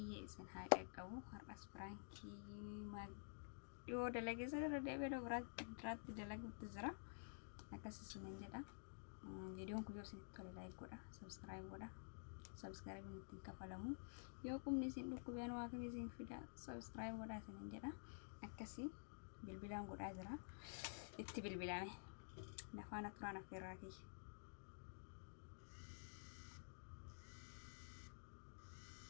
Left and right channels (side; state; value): right; silent; digital silence